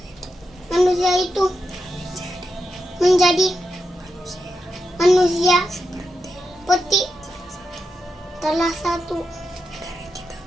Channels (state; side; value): normal; both; correlation 0.87